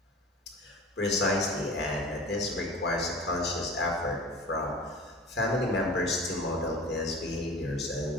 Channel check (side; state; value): both; normal; correlation 0.38